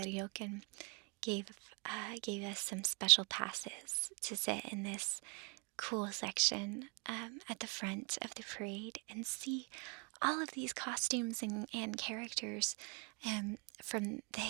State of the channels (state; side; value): quieter; left; 33.8 dB